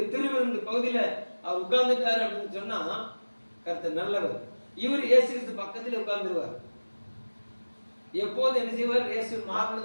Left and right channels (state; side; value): inverted; both; correlation -1.00